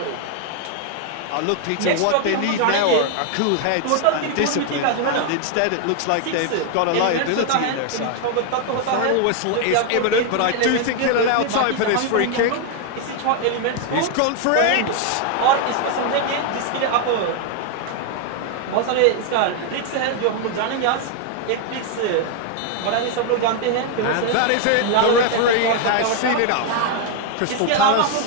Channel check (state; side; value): different; both; correlation 0.00